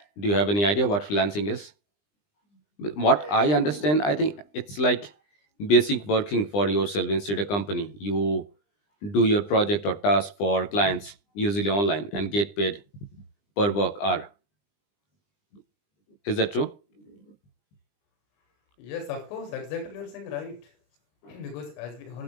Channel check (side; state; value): right; late; 20 ms